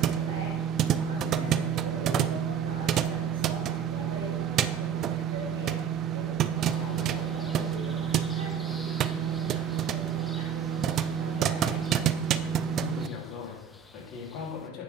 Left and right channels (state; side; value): quieter; left; 7.9 dB